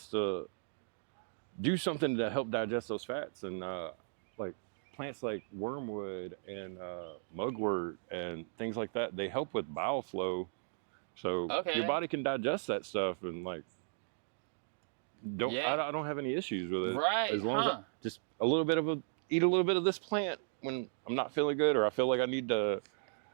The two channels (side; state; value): left; silent; digital silence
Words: to do something to help digest those fats, and like plants like wormwood and mugwort and things like that, they help with bowel flow. So your body can digest that stuff and like I don't have any issues with it. Right. As long as I just eat a little bit of this plant when I'm not feeling good or I feel like I need to